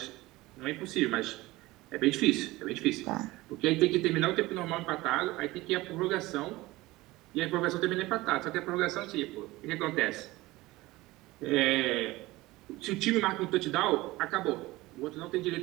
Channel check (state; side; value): quieter; left; 19.4 dB